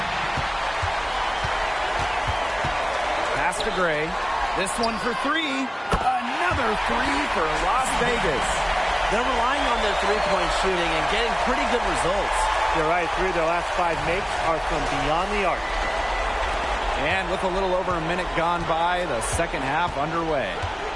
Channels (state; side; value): identical; both; correlation 1.00